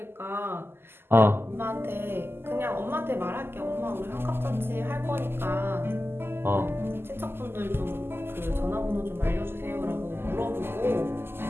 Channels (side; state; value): left; late; 0.11 ms